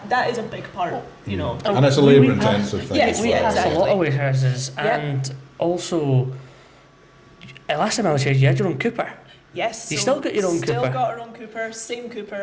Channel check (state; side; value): identical; both; correlation 1.00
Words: is a big part, And it's a labour intensive thing. We pass a lot of warehouses, and also last time I was here, you had your own cooper. Yes. You still got your own Still cooper. got our own cooper. Same